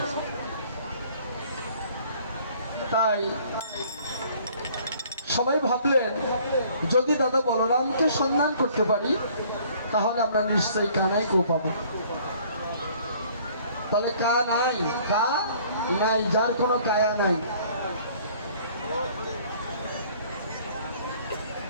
তাই সবাই ভাবলেন, যদি দাদা বলরামকে সন্ধান করতে পারি তাহলে আমরা নিশ্চয়ই কানাইকেও পাবো। তাহলে কা নাই, কা নাই, যার কোনো কায়া নাই।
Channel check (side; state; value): both; inverted; correlation -0.56